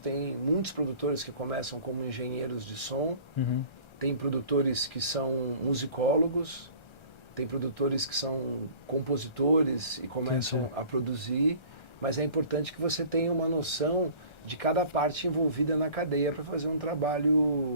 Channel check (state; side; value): late; right; 1.3 ms